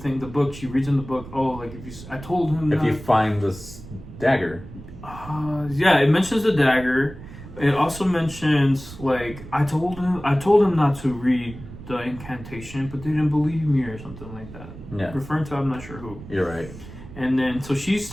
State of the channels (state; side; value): noise; right; rumble, 15 dB below the sound